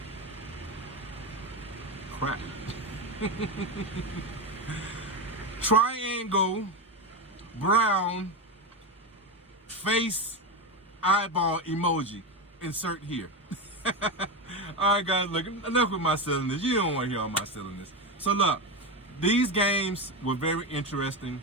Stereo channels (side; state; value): both; normal; correlation 0.15